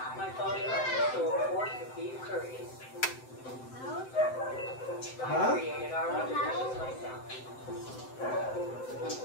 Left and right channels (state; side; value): late; right; 7.8 ms